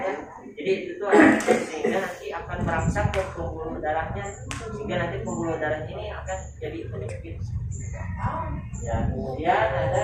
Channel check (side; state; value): both; identical; correlation 1.00